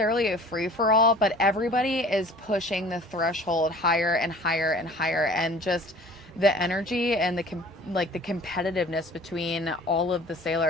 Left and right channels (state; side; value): normal; both; correlation 0.47